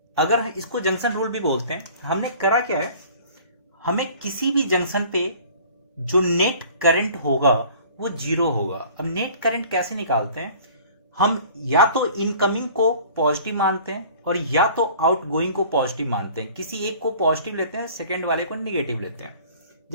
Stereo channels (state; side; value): inverted; both; correlation -0.49